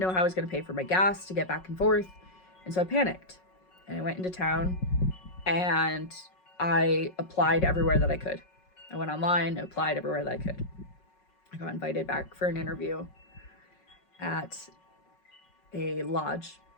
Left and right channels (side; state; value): right; late; 5.4 ms